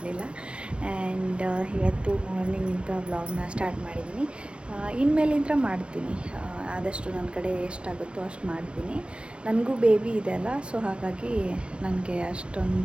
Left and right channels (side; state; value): left; late; 0.058 ms